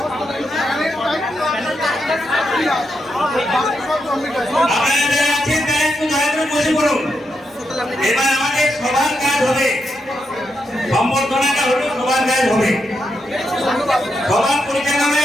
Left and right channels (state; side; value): normal; both; correlation 0.83